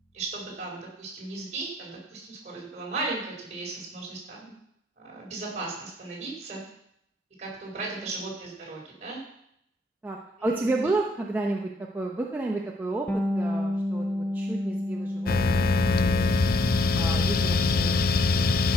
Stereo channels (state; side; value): normal; both; correlation 0.69